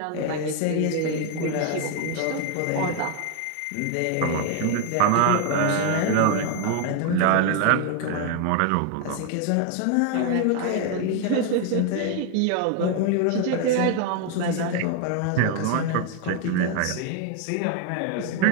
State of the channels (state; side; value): different; both; correlation 0.01